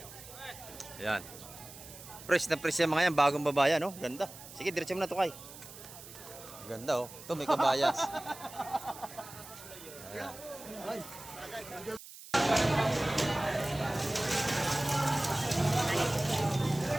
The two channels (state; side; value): noise; right; hiss, 16 dB below the sound